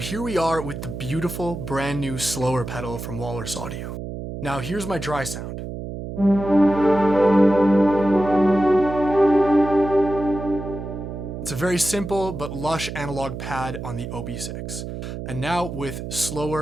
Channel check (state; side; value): noise; right; hum, 8 dB below the sound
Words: we are with the beautiful brand new Slöer pedal from Walrus Audio. Now here's my dry sound. It's a very simple but lush analog pad on the OB6. And now with